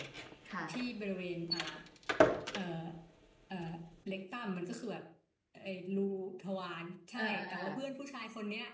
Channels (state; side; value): identical; both; correlation 1.00